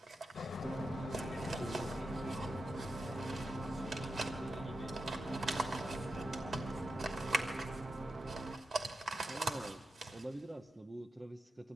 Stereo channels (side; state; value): both; normal; correlation 0.89